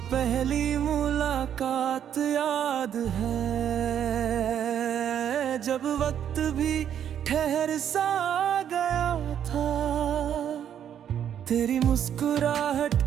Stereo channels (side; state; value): left; quieter; 9.4 dB